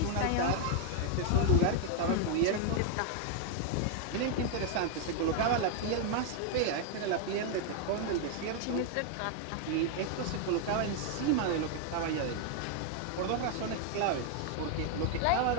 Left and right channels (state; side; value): different; both; correlation 0.00